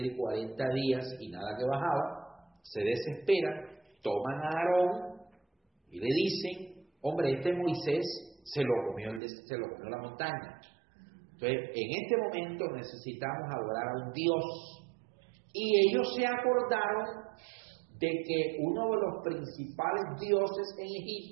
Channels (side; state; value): left; drops out; at 9.2 s